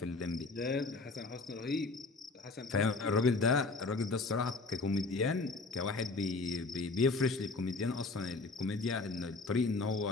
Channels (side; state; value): right; quieter; 3.7 dB